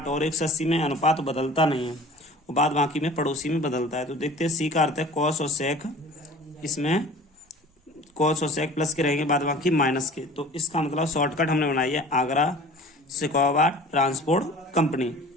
और 180 में अनुपात बदलता नहीं है, और बाद बाकी में पड़ोसी में बदलता है। तो देखते हैं, सी का अर्थ है कॉस और सेक, इसमें कॉस और सेक प्लस के रहेंगे, बाद बाकी माइनस के। तो इसका मतलब शॉर्टकट हमने बनाई है आगरा शिकोवा ट्रांसपोर्ट कंपनी।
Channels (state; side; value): normal; both; correlation 0.44